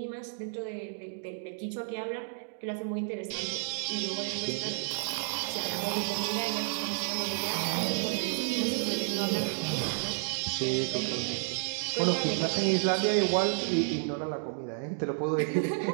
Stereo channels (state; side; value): silent; left; digital silence